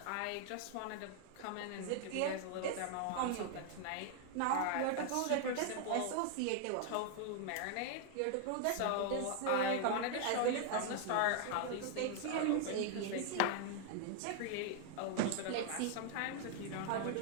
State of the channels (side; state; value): both; different; correlation 0.00